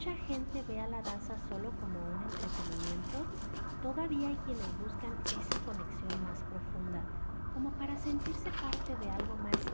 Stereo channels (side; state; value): both; inverted; correlation -1.00